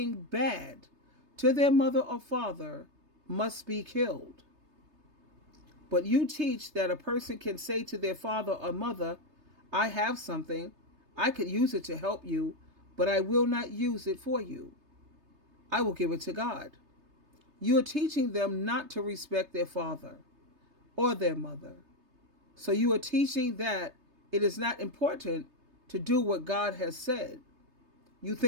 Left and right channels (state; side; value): late; left; 3.3 ms